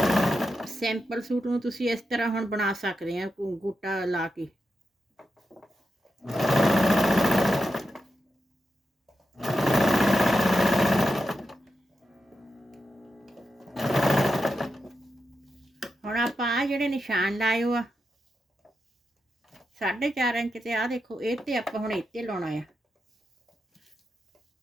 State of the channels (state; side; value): normal; both; correlation 0.87